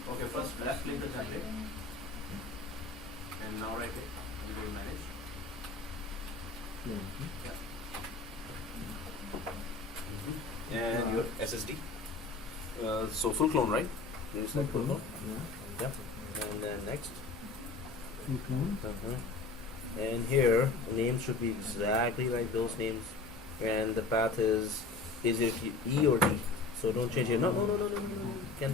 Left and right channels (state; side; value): quieter; right; 3.8 dB